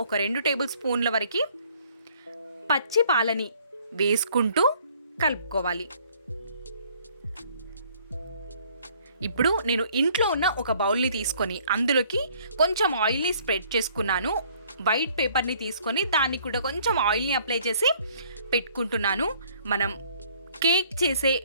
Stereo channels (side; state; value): both; inverted; correlation -0.60